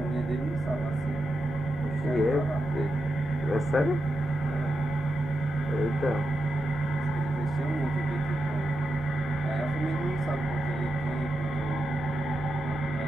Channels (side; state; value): both; normal; correlation 0.87